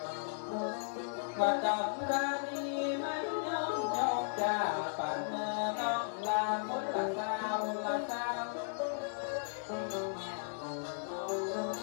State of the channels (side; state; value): right; silent; digital silence